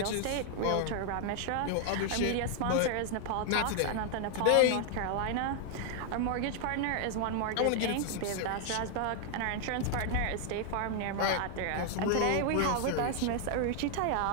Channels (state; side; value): different; both; correlation 0.00